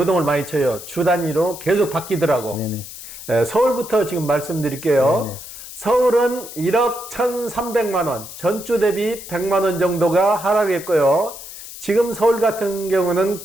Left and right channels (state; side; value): noise; left; hiss, 13 dB below the sound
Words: 많이 쳐요. 주 단위로 계속 바뀌더라고. 네네. 예, 서울부터 지금 말씀드릴게요. 네네. 서울은 1억 1,300만 원, 전주 대비 100만 원 정도가 하락했고요. 지금 서울 같은 경우는